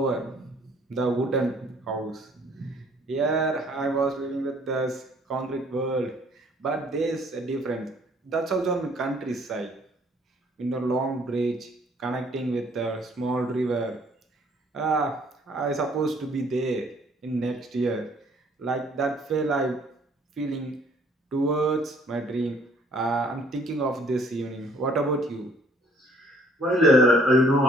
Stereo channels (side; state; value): both; normal; correlation 0.60